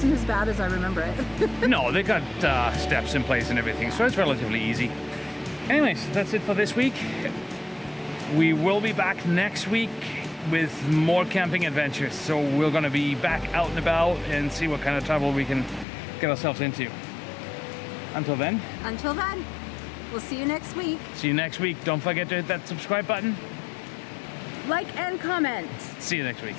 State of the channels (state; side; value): drops out; right; at 15.9 s